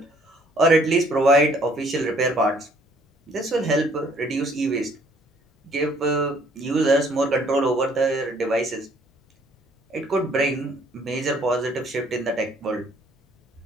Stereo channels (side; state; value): both; normal; correlation 0.61